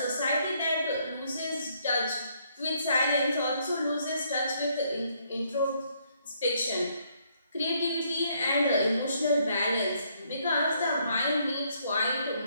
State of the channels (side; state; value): both; inverted; correlation -0.70